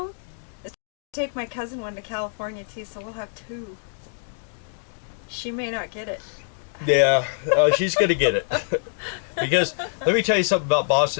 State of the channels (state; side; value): silent; right; digital silence